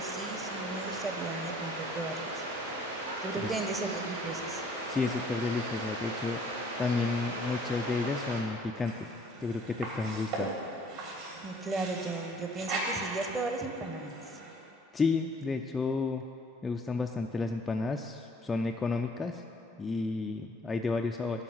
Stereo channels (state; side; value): normal; both; correlation 0.58